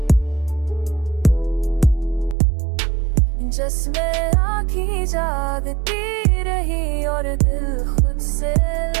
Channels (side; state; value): left; drops out; at 2.4 s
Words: जिसमें आँखें जागती रही और दिल खुद से